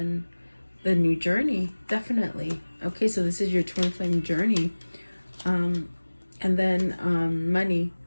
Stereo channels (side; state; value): both; inverted; correlation -1.00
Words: the new journey, definitely. Okay, so this is your twin flame journey. And then money.